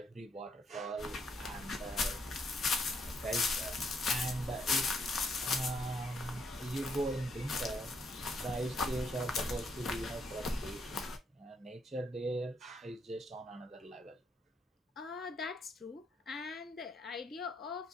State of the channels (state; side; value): normal; both; correlation 0.73